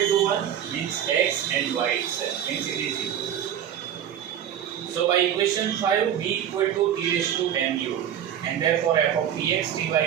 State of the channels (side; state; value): left; quieter; 9.8 dB